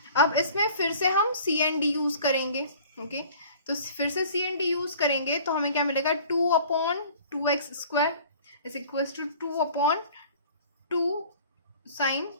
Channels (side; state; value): both; inverted; correlation -0.48